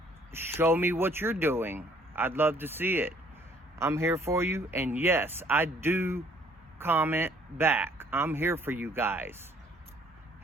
show me what you're doing. I'd love to see it. I'm here for you. And yes, I do comment back. I'm here for you guys.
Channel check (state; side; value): normal; both; correlation 0.60